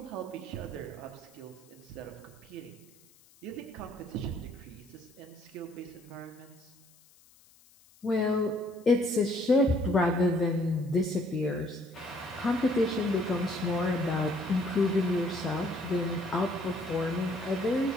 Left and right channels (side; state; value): left; noise; hiss, 28 dB below the sound